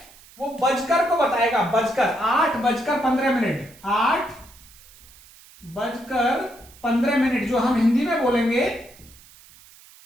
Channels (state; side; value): noise; right; hiss, 24 dB below the sound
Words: वो बजकर को बताएगा, बजकर। 8:15, 8:15 जो हम हिंदी में बोलेंगे